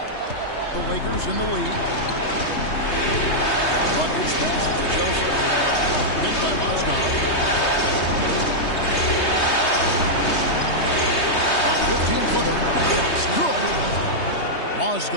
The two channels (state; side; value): late; right; 3.2 ms